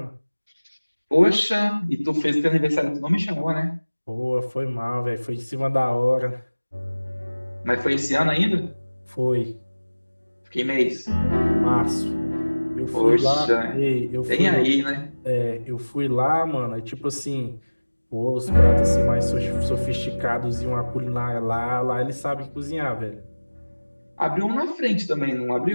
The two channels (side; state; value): both; inverted; correlation -1.00